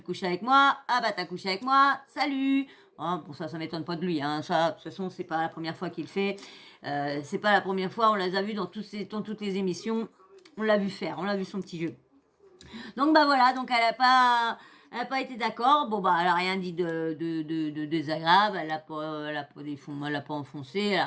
couches avec moi, ah bah t'as couché avec moi, salut. Hein, bon ça m'étonne pas de lui, hein. Ça, de toute façon, c'est pas la première fois qu'il le fait. C'est pas la première fois, on les a vus dans toutes les émissions. On l'a vu faire, on l'a vu son petit jeu. Donc bah voilà, donc Elle n'a pas été d'accord. Bon, bah, elle n'a rien dit de désagréable. Elle a pas enfoncé. Elle n'a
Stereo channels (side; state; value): both; identical; correlation 1.00